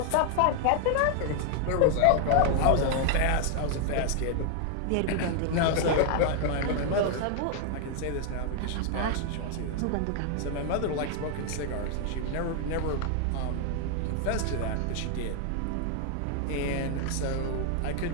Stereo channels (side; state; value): both; different; correlation 0.00